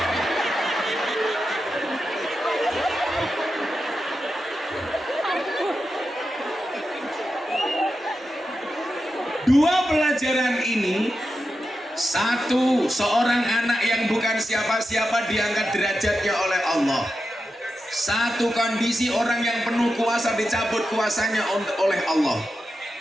Dua pelajaran ini, satu, seorang anak yang bukan siapa-siapa diangkat derajatnya oleh Allah. Satu, kondisi orang yang penuh kuasa dicabut kuasanya oleh Allah.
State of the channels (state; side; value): normal; both; correlation 0.90